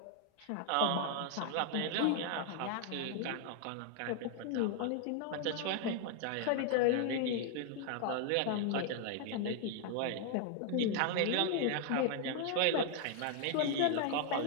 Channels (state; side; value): different; both; correlation 0.00